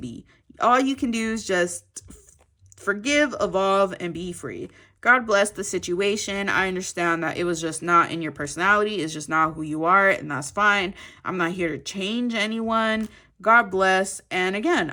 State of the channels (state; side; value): identical; both; correlation 1.00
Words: All you can do is just forgive, evolve, and be free. God bless the situation. I understand that it was just not in your personality. It's just not who you are, and that's fine. I'm not here to change anyone. God bless. And again,